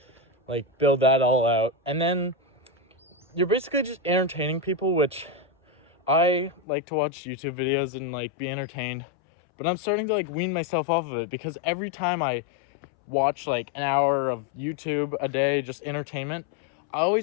like build that all out. And then you're basically just entertaining people, which I like to watch YouTube videos and like be entertained, but I'm starting to like wean myself off of it, because every time I watch like an hour of YouTube a day, just entertainment, I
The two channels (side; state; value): right; drops out; at 6.6 s